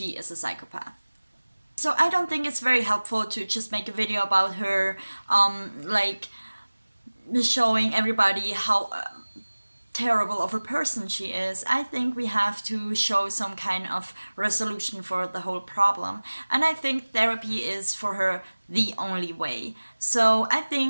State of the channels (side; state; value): both; inverted; correlation -1.00